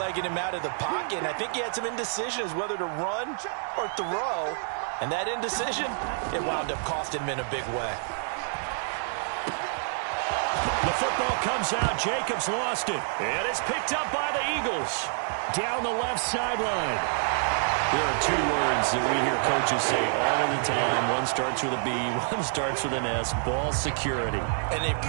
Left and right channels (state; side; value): silent; left; digital silence